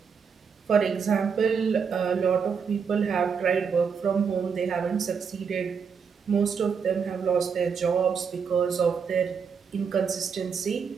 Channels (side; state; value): left; quieter; 6.2 dB